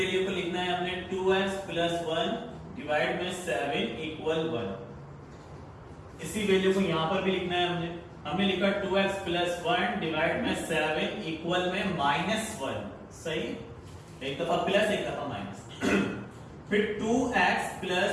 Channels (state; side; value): identical; both; correlation 1.00